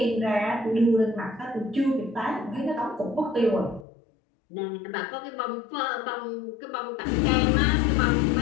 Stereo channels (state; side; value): drops out; right; at 3.9 s